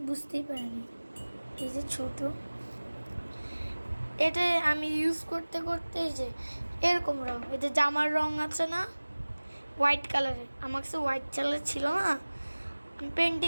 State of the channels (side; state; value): both; inverted; correlation -1.00